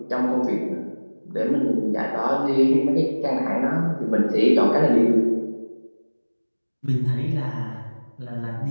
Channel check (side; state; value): both; inverted; correlation -1.00